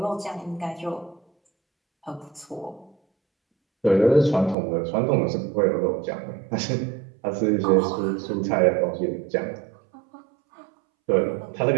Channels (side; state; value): left; drops out; at 4.5 s